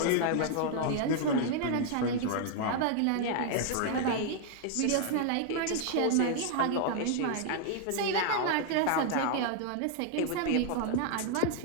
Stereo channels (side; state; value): both; different; correlation 0.00